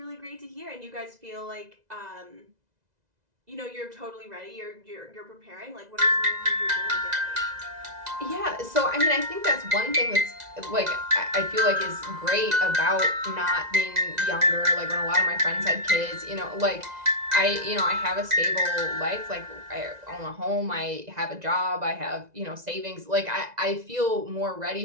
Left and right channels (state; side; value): late; left; 2.0 ms